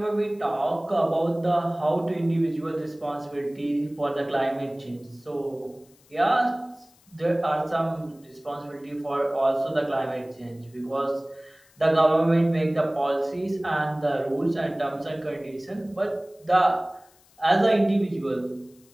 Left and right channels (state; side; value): noise; left; hiss, 30 dB below the sound